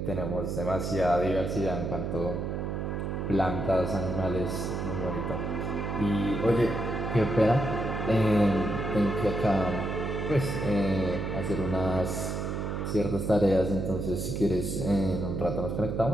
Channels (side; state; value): right; noise; hum, 3 dB below the sound